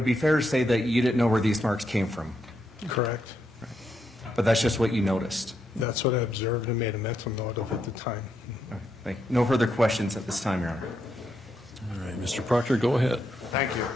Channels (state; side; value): normal; both; correlation 0.80